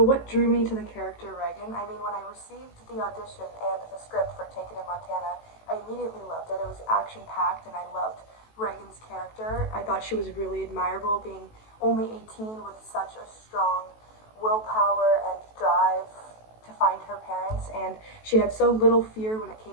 drew me to the character Reagan? I mean, when I received the audition and the script for Taken in Montana, I immediately loved it. It was action-packed and I loved Reagan's character. I thought she was really admirable, being only 18 with such a strong willpower and drive to find her parents, and she had so little fear when it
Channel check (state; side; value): late; right; 18 ms